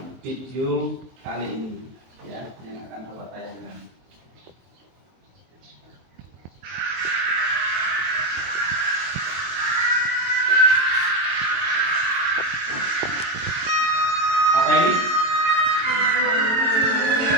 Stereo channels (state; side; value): late; left; 23 ms